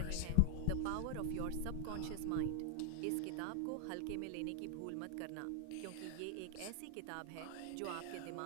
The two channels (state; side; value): different; both; correlation 0.00